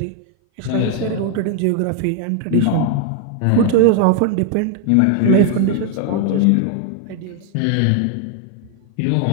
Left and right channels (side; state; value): both; different; correlation 0.00